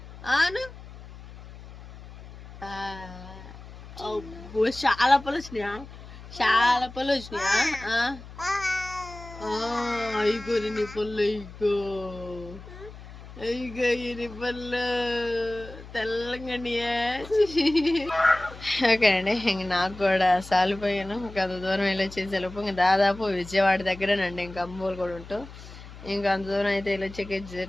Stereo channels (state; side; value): noise; left; hum, 16 dB below the sound